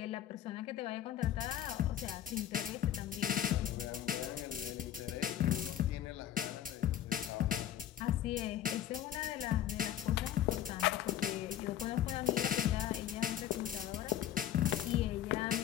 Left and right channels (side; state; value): right; quieter; 11.1 dB